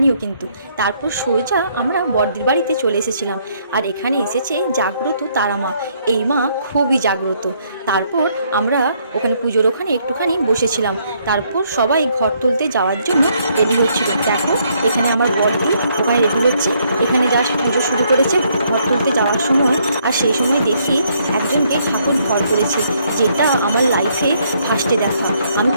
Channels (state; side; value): inverted; both; correlation -0.70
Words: কিন্তু। তারপর সোজা আমরা বড়দির বাড়িতে চলে এসেছিলাম। আর এখানে এসেছে জাগ্রত তারা মা। এই মা খুবই জাগ্রত। তারপর আমরা ওখানে পুজোর ওখানে একটুখানি বসেছিলাম। তারপর সবাই ঘর তুলতে যাওয়ার জন্য রেডি হচ্ছিল। দেখো এখানে আমার বরদি ওখানে রেডি হচ্ছে। এখানে জাস্ট পুজো শুরু করেছে ঘর তুলতে যাওয়ার সময়। আর সেই সময় দেখি একজনকে ঠাকুর ঘর করেছে, যেটা আমার লাইফে ফার্স্টে দেখা। আমি